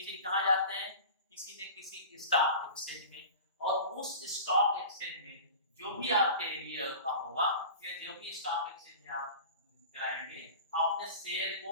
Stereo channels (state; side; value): inverted; both; correlation -0.37